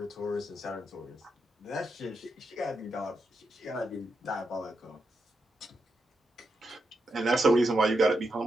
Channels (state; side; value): normal; both; correlation 0.84